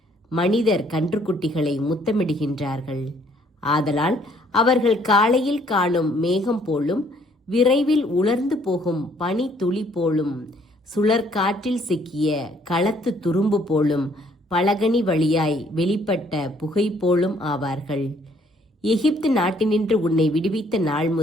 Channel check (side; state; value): both; normal; correlation 0.63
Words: மனிதர் கன்றுக்குட்டிகளை முத்தமிடுகின்றார்கள். ஆதலால் அவர்கள் காலையில் காணும் மேகம் போலும், விரைவில் உலர்ந்து போகும் பனி துளி போலும், சுழற்காற்றில் சிக்கிய களத்து துரும்பு போலும், பலகனி வழியாய் வெளிப்பட்ட புகை போலும் ஆவார்கள். எகிப்து நாட்டினின்று உன்னை விடுவித்த நாள்